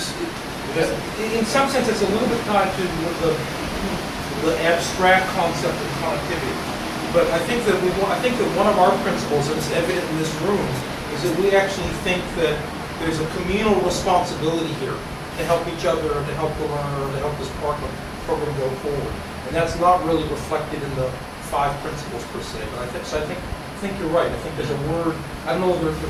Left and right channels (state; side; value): identical; both; correlation 1.00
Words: in some sense, it's a little bit tied to the abstract concept of connectivity. But I think that one of our principles, and it's evident in this room, is that we actually think that there's a communal responsibility here to help each other, to help the learner, to help this program go forward. And that's not really reflected in the 5 principles per se. But I think you're right. I think there's a word, I don't know if the